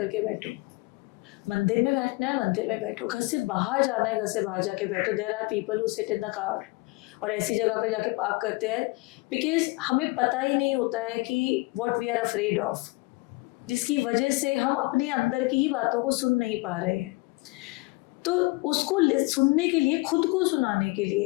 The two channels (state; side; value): quieter; right; 24.2 dB